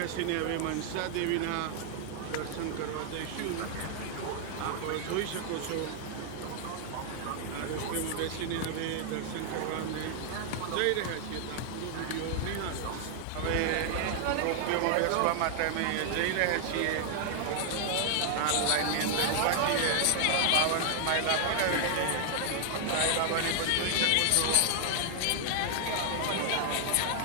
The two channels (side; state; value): both; different; correlation 0.00